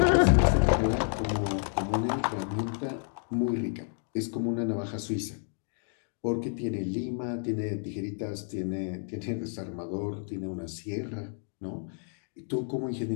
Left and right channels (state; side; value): silent; right; 58 dB below the other